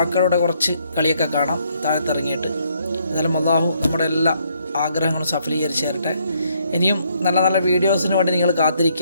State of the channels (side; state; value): both; inverted; correlation -0.71